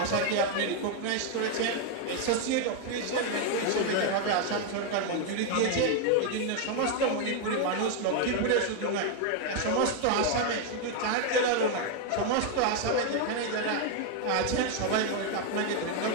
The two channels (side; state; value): both; different; correlation 0.00